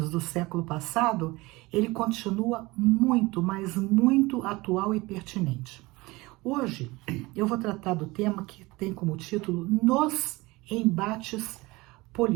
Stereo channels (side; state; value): left; quieter; 22.1 dB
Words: do século passado, ele continua muito, mas muito atual e pertinente. Hoje eu vou tratar do tema que tem como título Nos Embates